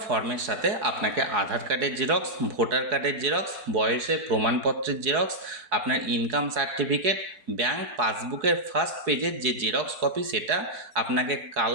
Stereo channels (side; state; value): left; late; 4.8 ms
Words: ফর্মের সাথে আপনাকে আধার কার্ডের জেরক্স, ভোটার কার্ডের জেরক্স, বয়সের প্রমাণপত্রের জেরক্স, আপনার ইনকাম সার্টিফিকেট, ব্যাংক পাসবুকের ফার্স্ট পেজের যে জেরক্স কপি সেটা, আপনাকে